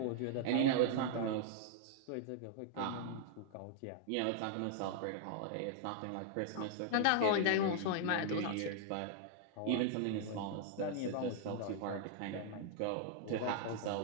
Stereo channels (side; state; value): both; different; correlation -0.01